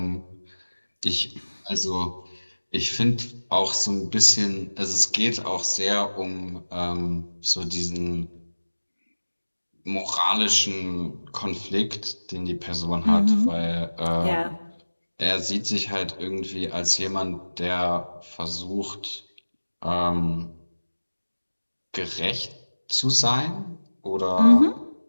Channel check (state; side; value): inverted; both; correlation -1.00